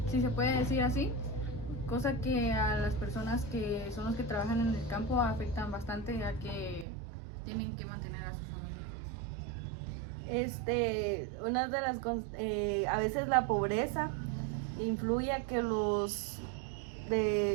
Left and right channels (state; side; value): drops out; left; at 6.9 s